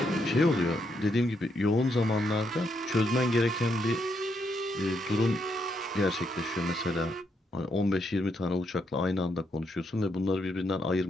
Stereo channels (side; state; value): both; normal; correlation 0.78